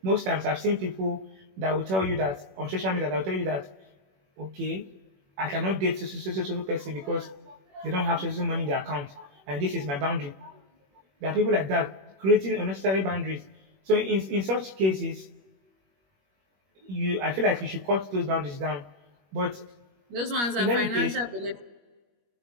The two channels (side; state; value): left; late; 21 ms